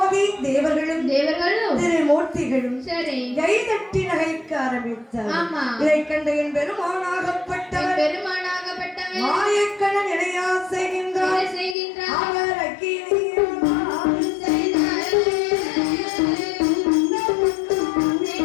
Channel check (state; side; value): drops out; right; at 11.8 s